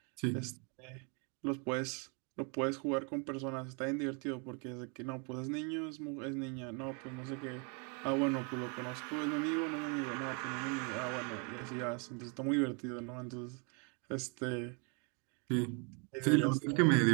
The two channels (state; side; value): quieter; left; 35.4 dB